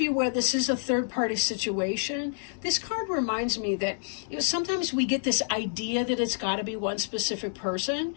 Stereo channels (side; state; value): right; silent; digital silence